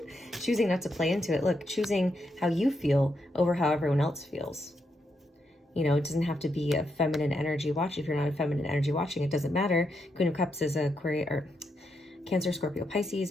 choosing not to play into it. Look, choosing how you feel over how everyone else feels. It doesn't have to be a feminine energy watch. If you're not a feminine energy watching, it doesn't matter. Queen of Cups is a Cancer, Scorpio, Pisces,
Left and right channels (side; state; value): both; normal; correlation 0.81